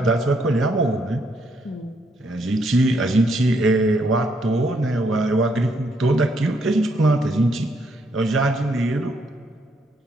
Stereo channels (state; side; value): normal; both; correlation 0.73